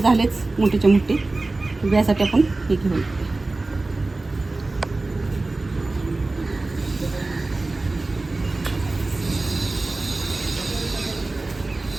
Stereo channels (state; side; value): quieter; left; 3.2 dB